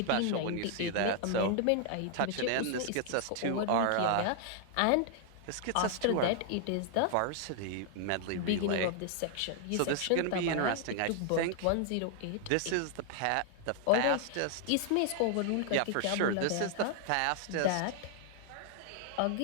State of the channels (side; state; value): both; different; correlation 0.00